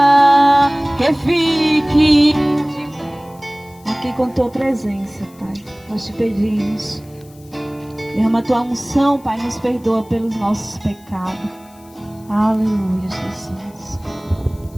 que fique aqui com tua presença, Pai. Nós te pedimos, derrama a tua unção, Pai, nos perdoa pelos nossos pecados. Aleluia, Jesus.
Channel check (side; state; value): left; noise; hiss, 27 dB below the sound